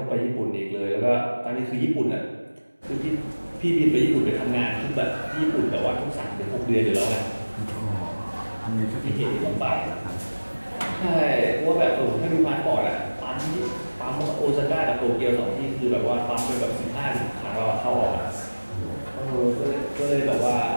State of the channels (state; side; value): inverted; both; correlation -1.00